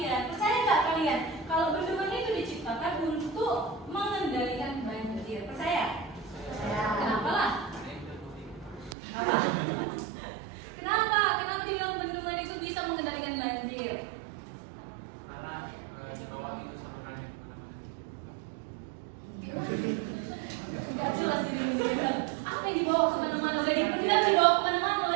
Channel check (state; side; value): drops out; left; at 9.0 s